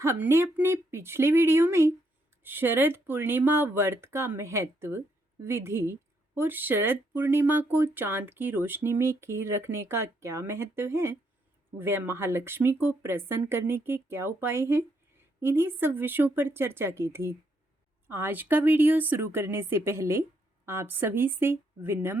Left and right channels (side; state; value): both; normal; correlation 0.75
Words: अपने पिछले वीडियो में शरद पूर्णिमा व्रत का महत्व, विधि और शरद पूर्णिमा को चांद की रोशनी में खीर रखने का क्या महत्व है, वह महालक्ष्मी को प्रसन्न करने के क्या उपाय हैं, इन्हीं सब विषयों पर चर्चा की थी। आज का वीडियो शुरू करने से पहले आप सभी से